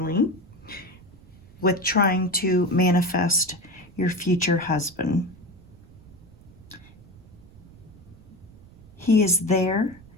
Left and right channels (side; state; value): right; noise; rumble, 23 dB below the sound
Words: with trying to manifest your future husband. He is there.